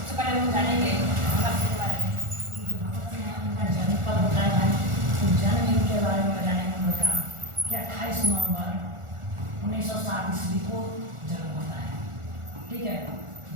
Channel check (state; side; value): late; left; 1.4 ms